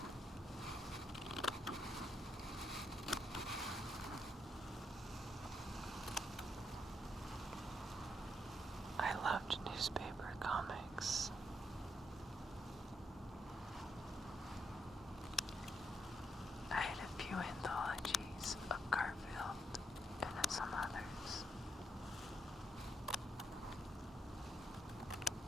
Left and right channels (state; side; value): normal; both; correlation 0.78